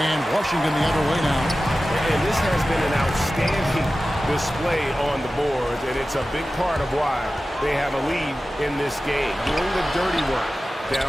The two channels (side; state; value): both; normal; correlation 0.95